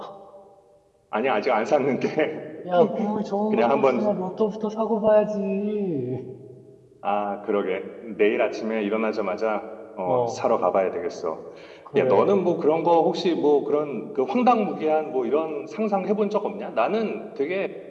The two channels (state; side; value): identical; both; correlation 1.00